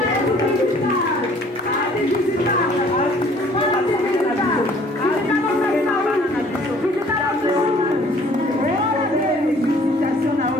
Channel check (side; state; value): both; normal; correlation 0.56